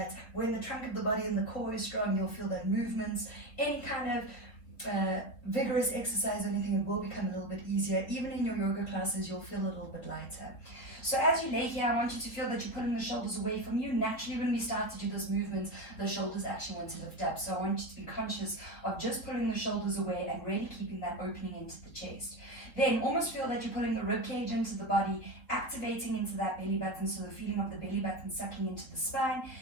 when the trunk of the body and the core is strong, you'll feel that movements, any kind of vigorous exercise or anything, it will become a little bit easier. Even in your yoga classes, you'll feel a little bit lighter. So as you lay here, I want you to feel that you're pulling the shoulders away from you. Naturally, when we start to do those movements, the shoulders actually want to lift up. So I want you to be conscious of just pulling the shoulders away and really keeping that opening into the chest. Then almost feel that you're pulling the rib cage into the body, activating into that belly button, so the feeling of the belly button sucking into the spine.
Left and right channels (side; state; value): right; late; 3.5 ms